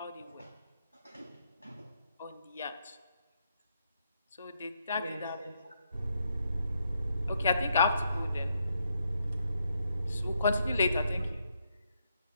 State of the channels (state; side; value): inverted; both; correlation -0.78